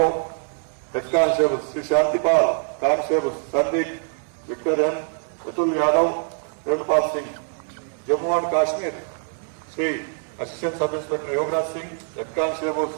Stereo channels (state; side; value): silent; left; 59 dB below the other